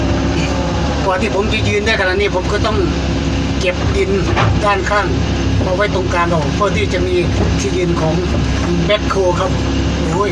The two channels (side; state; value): both; identical; correlation 1.00